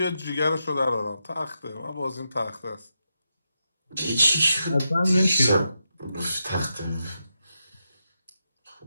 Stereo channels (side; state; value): both; inverted; correlation -0.85